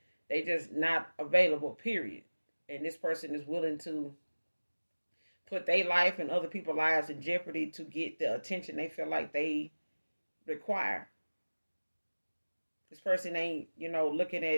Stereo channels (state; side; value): inverted; both; correlation -1.00